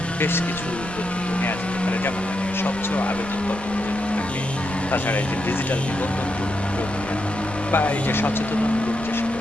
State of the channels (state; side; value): noise; right; rumble, 17 dB below the sound